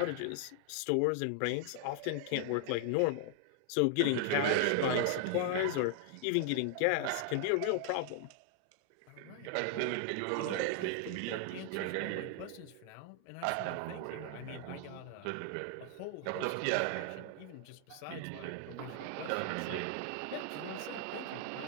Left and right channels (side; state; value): both; different; correlation 0.00